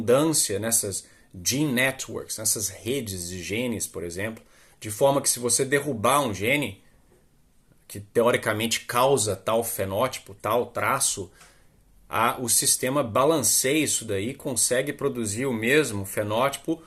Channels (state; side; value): identical; both; correlation 1.00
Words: nessas gene networks, nessas redes de genes, por exemplo, de forma que se você derrubar um gene, que teoricamente causa tal fenótipo, tal traço, o sistema balanceia isso daí e consegue produzir o mesmo fenótipo